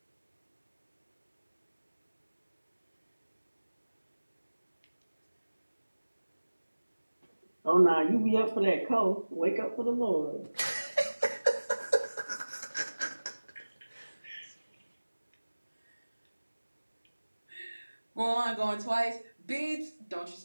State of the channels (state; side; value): inverted; both; correlation -1.00